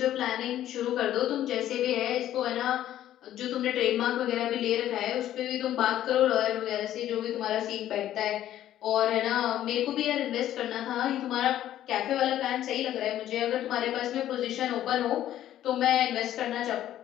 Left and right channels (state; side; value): quieter; right; 12.3 dB